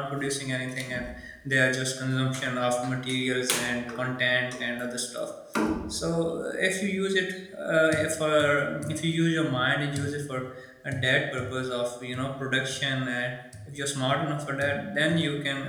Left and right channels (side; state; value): both; identical; correlation 1.00